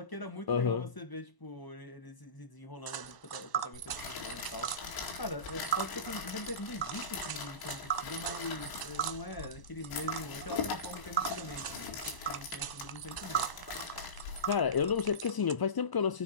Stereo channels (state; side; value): late; right; 1.0 ms